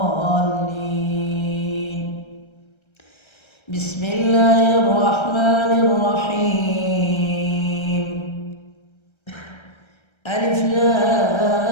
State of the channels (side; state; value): right; late; 1.3 ms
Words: بسم الله الرحمن الرحيم. ألف